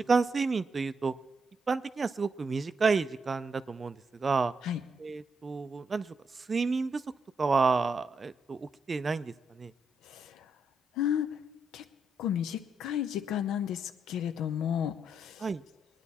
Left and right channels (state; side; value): normal; both; correlation 0.80